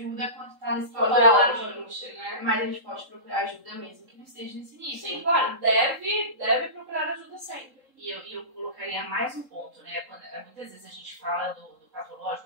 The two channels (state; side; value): late; left; 3.8 ms